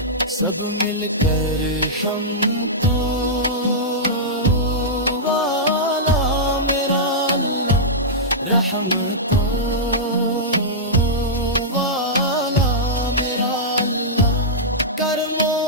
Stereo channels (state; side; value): normal; both; correlation -0.11